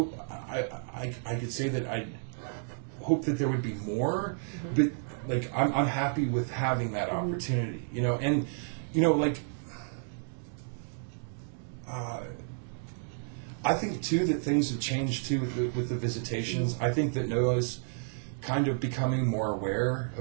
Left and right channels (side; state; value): left; silent; digital silence